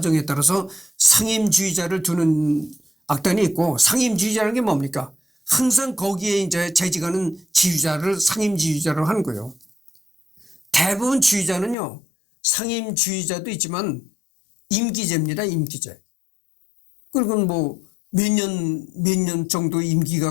따라서 상임 지휘자를 두는 악단이 있고 상임 지휘자라는 게 뭡니까? 항상 거기에 이제 재직하는 지휘자를 상임 지휘자로 하는 거예요. 대부분 지휘자는요. 상임 지휘자도 있지만 임기제입니다. 임기제. 그리고 몇 년 정도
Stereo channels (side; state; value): right; drops out; at 11.8 s